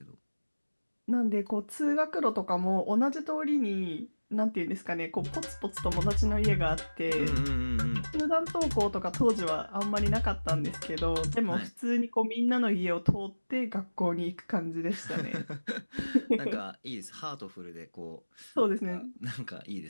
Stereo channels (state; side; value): inverted; both; correlation -1.00